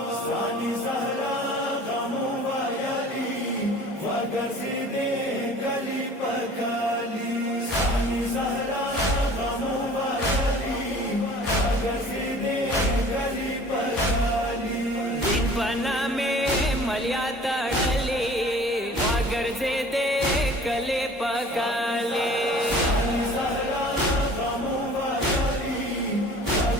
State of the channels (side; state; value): both; normal; correlation 0.47